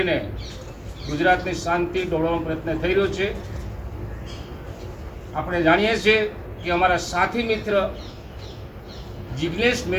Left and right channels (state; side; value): identical; both; correlation 1.00